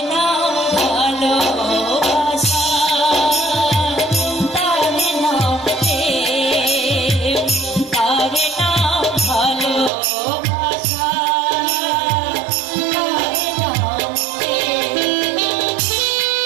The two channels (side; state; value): left; drops out; at 9.9 s